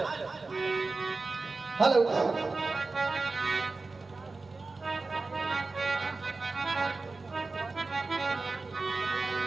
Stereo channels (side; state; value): left; quieter; 3.7 dB